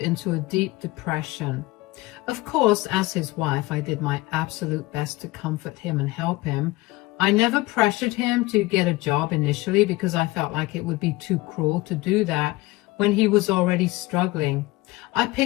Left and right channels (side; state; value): right; quieter; 20.3 dB